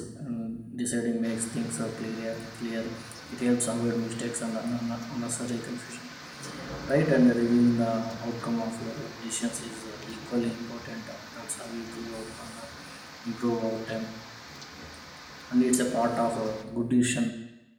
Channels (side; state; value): both; identical; correlation 1.00